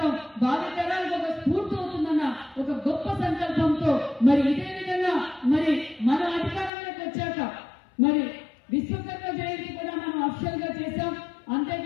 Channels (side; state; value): right; drops out; at 6.7 s